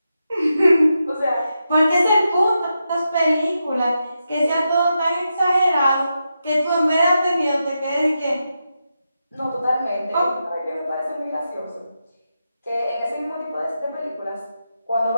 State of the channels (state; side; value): inverted; both; correlation -0.87